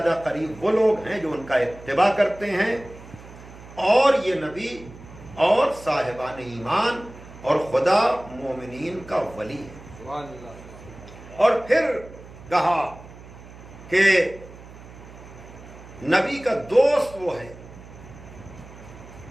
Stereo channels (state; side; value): noise; right; hum, 18 dB below the sound